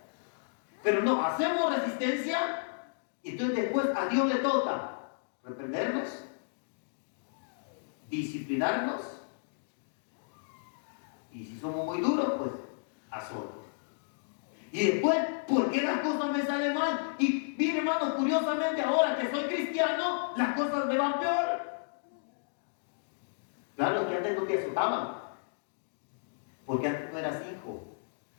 Pero no, hacemos resistencia y entonces después a Dios le toca reprendernos, disciplinarnos y si somos muy duros, pues azote. Y después, ¿por qué las cosas me salen mal? Y mire, hermano, curiosamente ahora que soy cristiano, las cosas me van peor. Claro, que antes no te azotaban, porque antes no eras hijo.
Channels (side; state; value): right; silent; digital silence